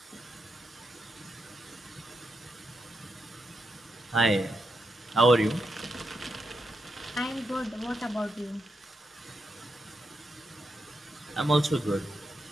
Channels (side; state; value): both; normal; correlation 0.85